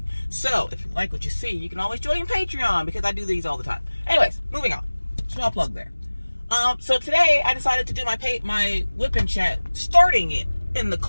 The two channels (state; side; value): inverted; both; correlation -1.00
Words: So, if you like what you see, you can always join Patreon because I do these all the time. Anyways, moving on. Small plug there. So today I decided to do my whip and chat, starting it in the